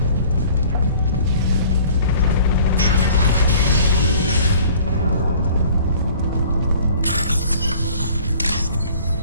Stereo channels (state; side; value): inverted; both; correlation -0.51